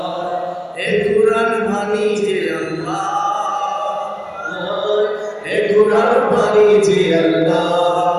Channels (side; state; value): both; identical; correlation 1.00